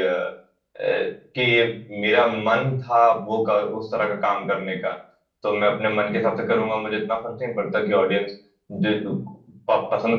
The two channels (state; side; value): identical; both; correlation 1.00